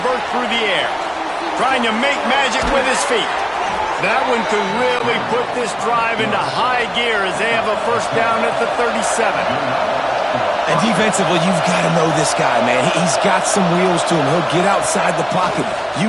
through the air. Trying to make magic with his feet. That one could really put this drive into high gear as they have a 1st down at the 37. And defensively, you've got to know this guy, man. He's got some wheels to him. He'll get outside the pocket.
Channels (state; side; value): identical; both; correlation 1.00